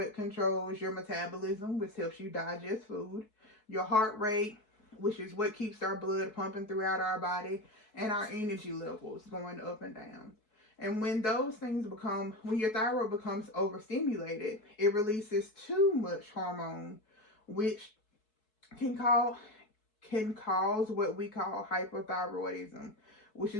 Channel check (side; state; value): right; late; 4.6 ms